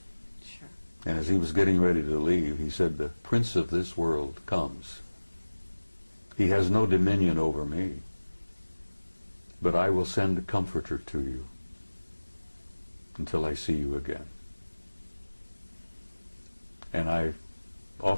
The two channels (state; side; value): inverted; both; correlation -1.00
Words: Sure. And as he was getting ready to leave, he said, the prince of this world comes. He has no dominion over me, but I will send a comforter to you until I see you again. And I